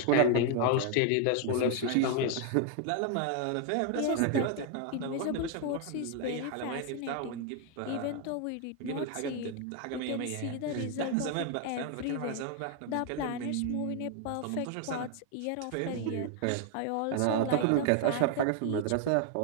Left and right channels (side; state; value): both; different; correlation 0.00